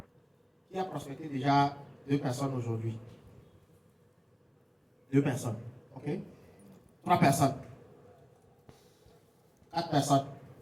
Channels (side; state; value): both; identical; correlation 1.00